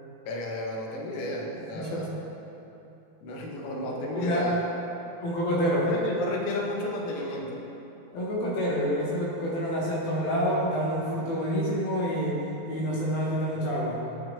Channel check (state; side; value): late; right; 18 ms